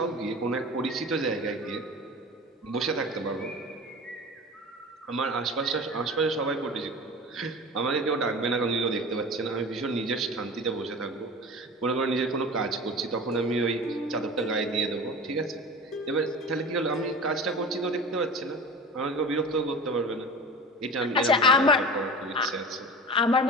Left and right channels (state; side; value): normal; both; correlation 0.35